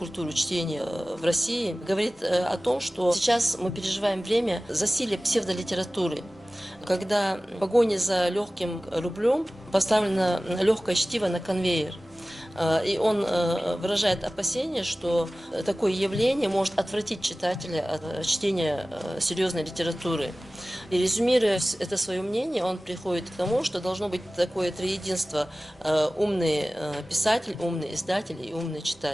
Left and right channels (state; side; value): normal; both; correlation 0.97